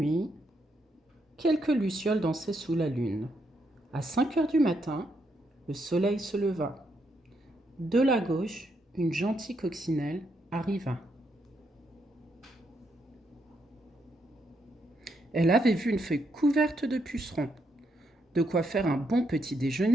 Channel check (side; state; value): both; normal; correlation 0.78